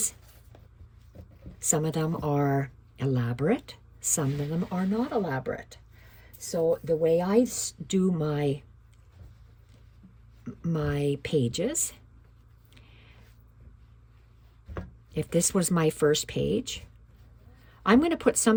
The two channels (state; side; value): identical; both; correlation 1.00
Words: some of them are elaborate. Some of them are not elaborate. So the way I do my pages, if this was my first page, I'm going to put